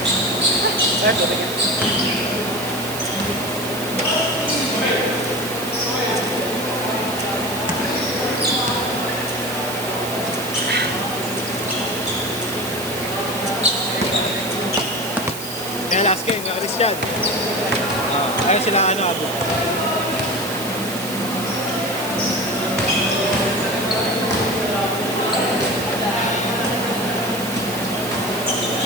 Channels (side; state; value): right; noise; hiss, 9 dB below the sound